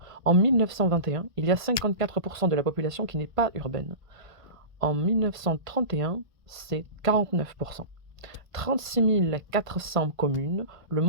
En 1921, il y a 54% de la population qui n'est pas urbaine. En 1931, c'est 49%. 36 400 communes, le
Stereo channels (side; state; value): left; late; 1.5 ms